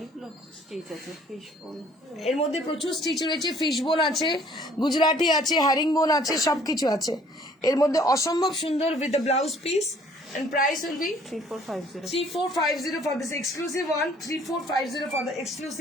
স্টিচ আছে, ফিশ বোন, এর মধ্যে প্রচুর স্টিচ রয়েছে, ফিশ বোন আছে, গুজরাটি আছে, হ্যারিং বোন আছে, সবকিছু আছে এর মধ্যে. অসম্ভব সুন্দর with the blouse piece, and price will be 3450 for this exclusive one. 3450 for the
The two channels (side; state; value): both; normal; correlation 0.58